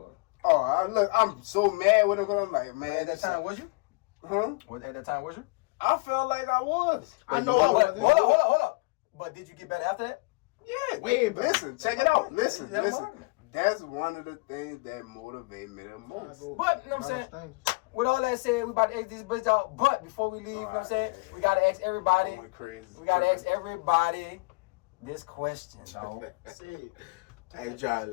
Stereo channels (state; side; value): quieter; right; 28.5 dB